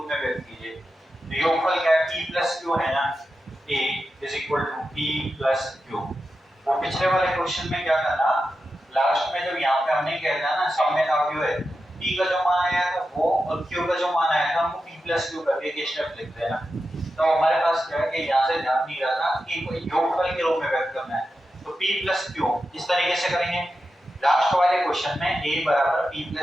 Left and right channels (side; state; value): both; normal; correlation 0.90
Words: में व्यक्त कीजिए। तो योगफल क्या है p प्लस q है ना, a is equal to p plus q। वो पिछले वाले क्वेश्चन में क्या करना लास्ट में जब यहाँ पे हमने कहना ना सममित अवयव है, p का जो मान आया था वो और q का जो मान आया था हमको p प्लस q करके एक स्टेप लिख देना। तो हमारे पास क्या है कि यहाँ से ध्यान नहीं रहा था कि कोई योगफल के रूप में व्यक्त करना है, तो p प्लस q इस तरीके से करेंगे। लास्ट वाले क्वेश्चन में a बराबर p